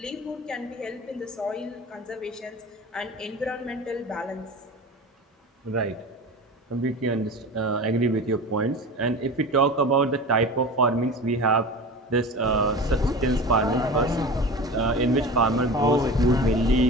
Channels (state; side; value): normal; both; correlation 0.33